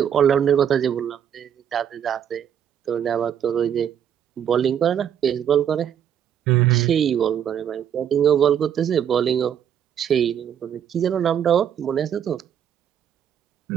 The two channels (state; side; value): quieter; left; 9.0 dB